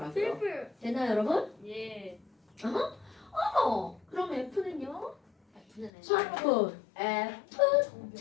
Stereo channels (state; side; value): drops out; right; at 5.9 s